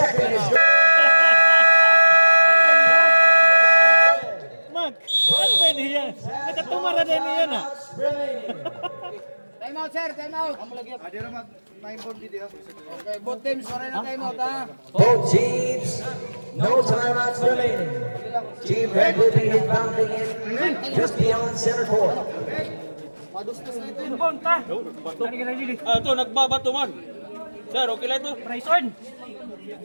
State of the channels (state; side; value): inverted; both; correlation -1.00